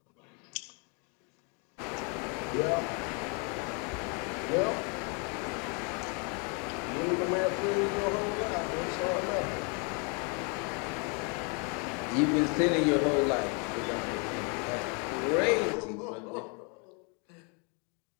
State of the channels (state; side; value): quieter; right; 35.4 dB